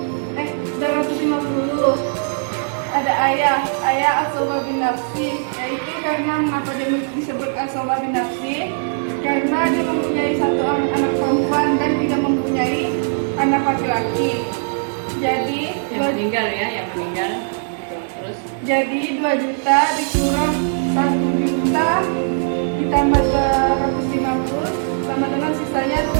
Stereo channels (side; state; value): left; silent; digital silence